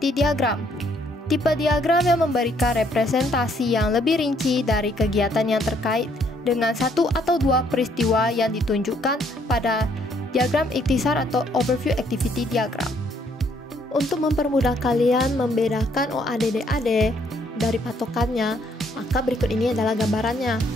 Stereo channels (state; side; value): normal; both; correlation 0.68